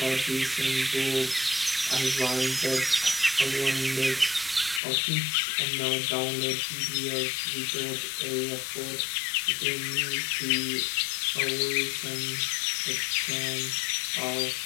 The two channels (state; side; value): drops out; right; at 4.8 s